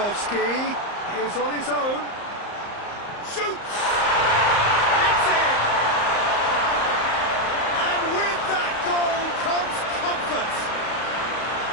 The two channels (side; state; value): right; late; 34 ms